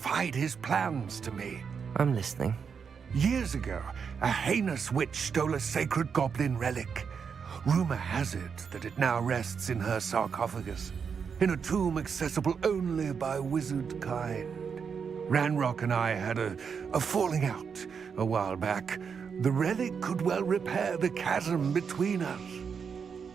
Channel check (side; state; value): left; quieter; 6.4 dB